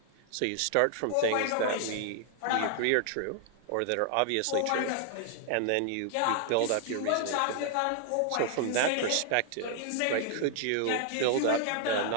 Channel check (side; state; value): both; different; correlation 0.00